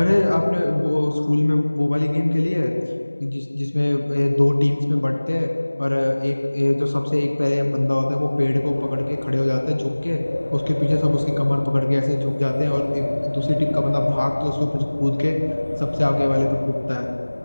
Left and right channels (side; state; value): both; inverted; correlation -1.00